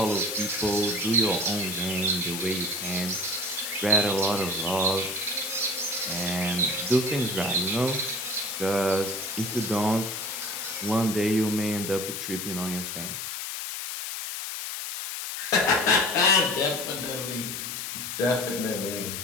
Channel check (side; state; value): left; noise; hiss, 5 dB below the sound